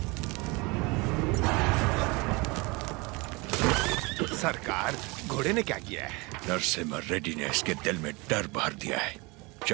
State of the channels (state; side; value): quieter; left; 26.3 dB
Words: सरकार, घोड़े ने क्या किया है? नरसिम्हा रेड्डी ने इसके दिल में डर भर दिया है।